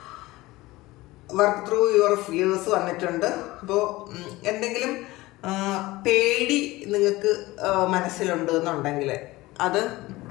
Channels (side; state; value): right; quieter; 19.4 dB